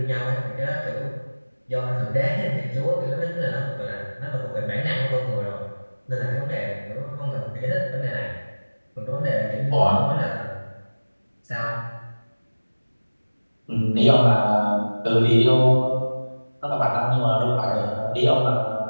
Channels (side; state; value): both; inverted; correlation -1.00